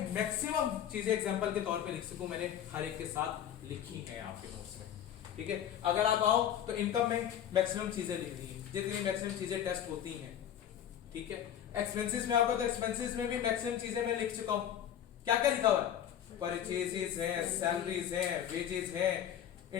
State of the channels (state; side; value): quieter; right; 10.1 dB